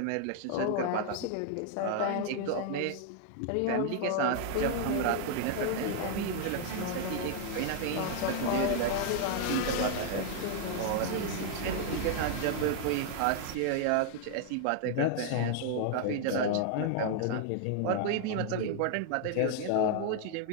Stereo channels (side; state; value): both; different; correlation 0.00